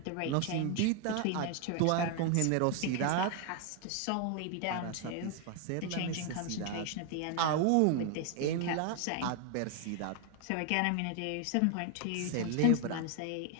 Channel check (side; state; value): both; different; correlation 0.00